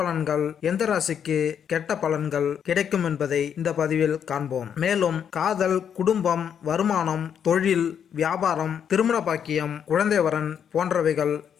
எந்த ராசிக்கு கெட்ட பலன்கள் கிடைக்கும் என்பதை இந்த பதிவில் காண்போம். மேலும் காதல், குடும்பம், வருமானம், தொழில், வியாபாரம், திருமண பாக்கியம், குழந்தை வரன் போன்றவைகள்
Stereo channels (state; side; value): quieter; right; 8.2 dB